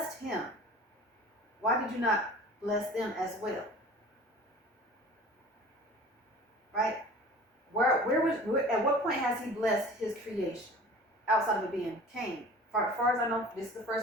him, why did you not bless them as well? Right? At what point has he blessed his creation? Outside of it being Cain. As far as I know, this is the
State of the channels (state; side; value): normal; both; correlation 0.43